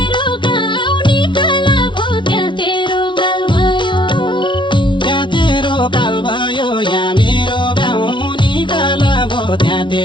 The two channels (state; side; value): late; right; 0.24 ms